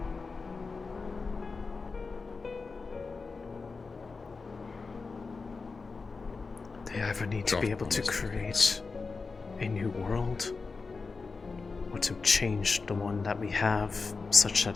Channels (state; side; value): quieter; right; 4.3 dB